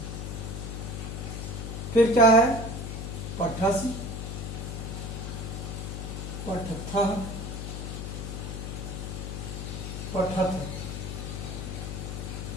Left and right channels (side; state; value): left; noise; hum, 5 dB below the sound